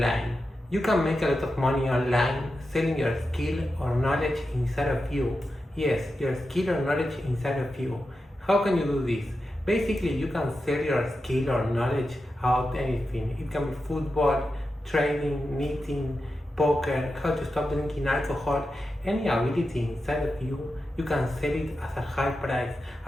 You can make a lot of money online selling your skill or knowledge inside of you. Yes, your skill or knowledge inside of you. How can you do this? Basically, you can sell your skill or knowledge about anything. It can be football, trading, knitting, poker, how to stop drinking alcohol, any ability inside of you. You can sell it as a high price,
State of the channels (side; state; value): both; normal; correlation 0.90